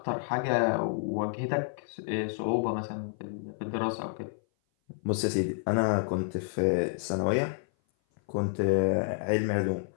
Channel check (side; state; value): right; silent; 56 dB below the other